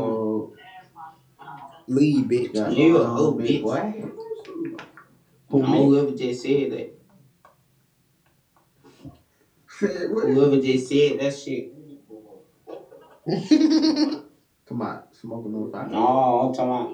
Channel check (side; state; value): both; identical; correlation 1.00